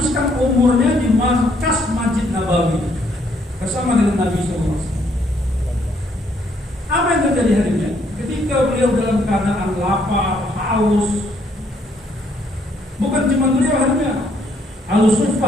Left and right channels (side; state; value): both; normal; correlation 0.69